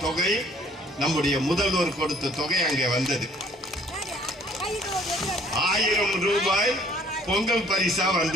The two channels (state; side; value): normal; both; correlation 0.58